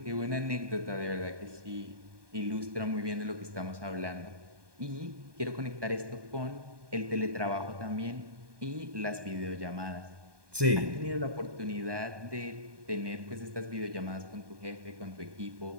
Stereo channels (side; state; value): left; late; 1.2 ms